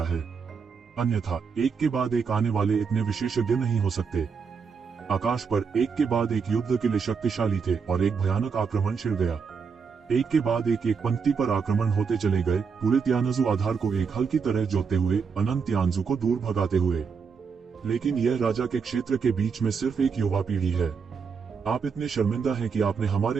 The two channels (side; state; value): left; quieter; 5.8 dB